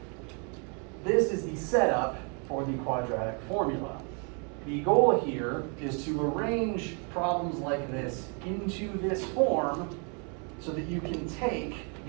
This is the setup for the quadratic formula. The goal here is to arrange problems like this into this form so that you can take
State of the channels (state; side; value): quieter; left; 37.0 dB